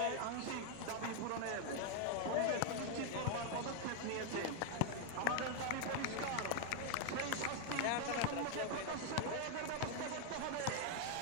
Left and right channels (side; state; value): both; different; correlation 0.00